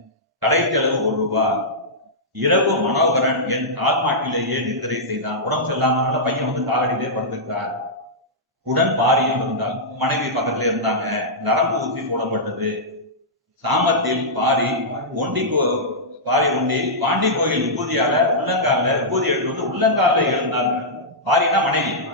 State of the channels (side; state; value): both; normal; correlation -0.12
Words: கடை செலவு 1 ரூபாய். இரவு மனோகரன் என் கால்மாட்டிலேயே நித்திரை செய்தான். உடம்பு செல்லாமனால பையன் காலடியிலே படுத்துக்கிறார். உடன் பாரியும் இருந்தால், மனைவி பக்கத்துல இருந்தாங்க. நரம்பு ஊசி போடப்பட்டது. சாமத்தில் பாரி ஒண்டி பாண்டி கோயில் விபூதியால உள்ளங்கால விபூதி எடுத்து உள்ளங்கால எழுந்தார். பாரினா மனைவி,